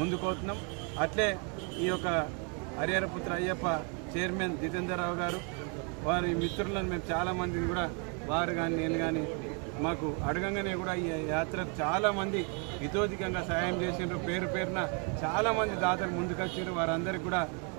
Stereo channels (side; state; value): left; quieter; 34.5 dB